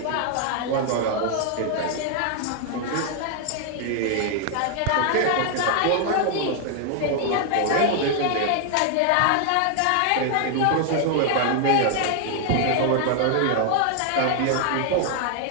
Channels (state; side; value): different; both; correlation 0.00